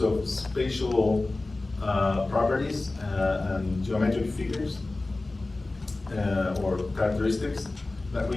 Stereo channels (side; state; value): right; quieter; 3.1 dB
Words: of spatial properties and geometric figures or characteristics that